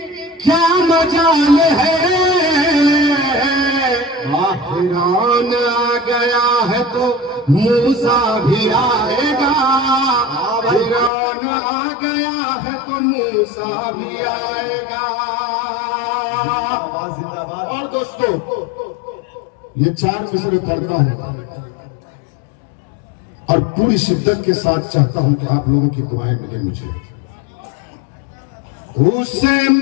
क्या मजाल है। फिरौन आ गया है तो मूसा भी आएगा। फिरौन आ गया है तो मूसा भी आएगा। और दोस्तों ये 4 मिसरे पढ़ता हूं और पूरी शिद्दत के साथ चाहता हूं कि आप लोगों की दुआएं मिले मुझे। उसे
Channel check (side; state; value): right; drops out; at 11.1 s